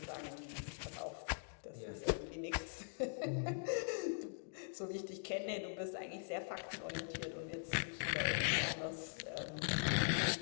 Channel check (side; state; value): right; silent; digital silence